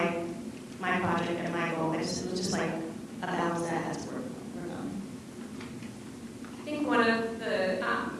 project and my goal. It was just like a balance that I had to work on. I think one of the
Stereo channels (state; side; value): identical; both; correlation 1.00